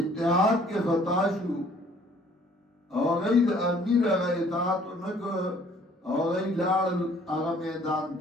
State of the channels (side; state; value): both; normal; correlation 0.58